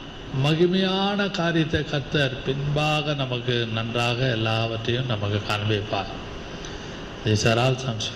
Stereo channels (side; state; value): both; identical; correlation 1.00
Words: மகிமையான காரியத்தை கர்த்தர் பின்பாக நமக்கு நன்றாக எல்லாவற்றையும் நமக்கு காண்பிப்பார். These are all some